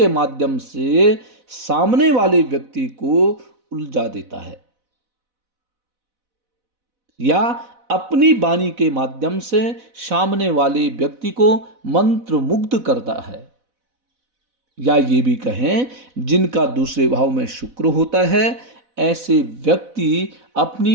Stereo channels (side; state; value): left; late; 4.0 ms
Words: माध्यम से सामने वाले व्यक्ति को उलझा देता है, या अपनी वाणी के माध्यम से सामने वाले व्यक्ति को मंत्रमुग्ध करता है। या ये भी कहें जिनका दूसरे भाव में शुक्र होता है, ऐसे व्यक्ति